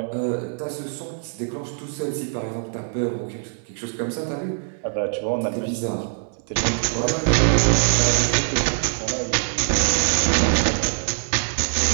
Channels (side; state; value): left; silent; 63 dB below the other